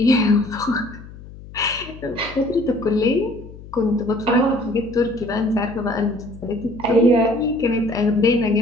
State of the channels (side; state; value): left; noise; hum, 17 dB below the sound